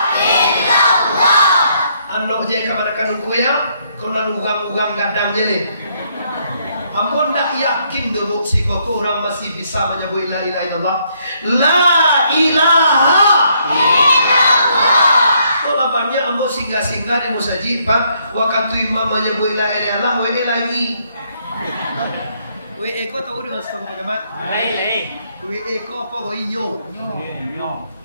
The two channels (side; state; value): both; inverted; correlation -0.71